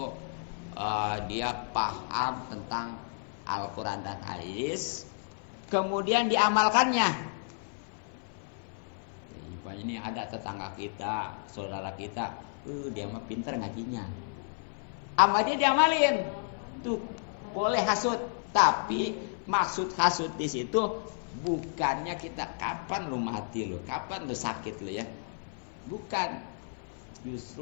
dia paham tentang Al-Quran dan hadis, kemudian diamalkannya. Ini ada tetangga kita, saudara kita, dia mah pinter ngajinya, sama dia diamalin, tuh boleh hasud. Tapi maksud hasud di situ bukannya kita kapan lu mati lu, kapan lu sakit lu ya, bukan.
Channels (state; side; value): silent; right; 57 dB below the other